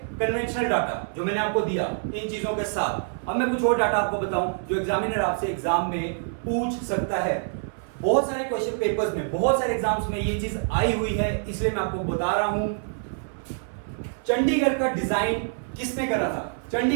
कन्वेंशनल डाटा जो मैंने आपको दिया इन चीजों के साथ। अब मैं कुछ और डाटा आपको बताऊं जो एग्जामिनर आपसे एग्जाम में पूछ सकता है। बहुत सारे क्वेश्चन पेपर्स में, बहुत सारे एग्जाम्स में ये चीज आई हुई है, इसलिए मैं आपको बता रहा हूं। चंडीगढ़ का डिजाइन किसने करा था?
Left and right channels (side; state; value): left; silent; 57 dB below the other